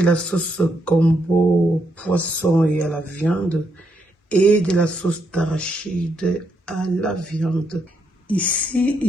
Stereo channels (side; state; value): both; normal; correlation 0.78